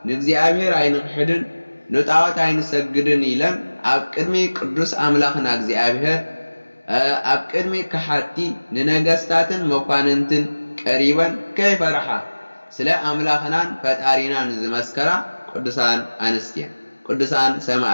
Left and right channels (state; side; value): inverted; both; correlation -1.00